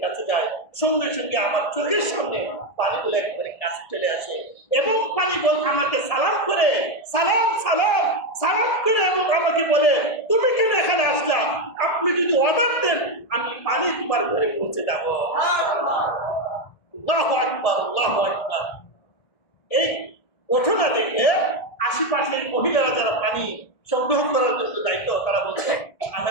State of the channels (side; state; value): right; late; 1.8 ms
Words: কাছে যাই, সঙ্গে সঙ্গে আমার চোখের সামনে পানিগুলো একবারে কাছে চলে আসে এবং পানি বল আমাকে সালাম করে সালাম সালাম সালাম করে এবং আমাকে বলে তুমি কেন এখানে আসলা, আপনি যদি অর্ডার দেন আমি পানি তোমার ঘরে পৌঁছে যাবো। আল্লাহু আকবার, আল্লাহু আকবার। এই ঘটনা দেখে আশেপাশের মহিলারা যারা পানি সংগ্রহ করার জন্য দায়িত্ব, তারা বলছে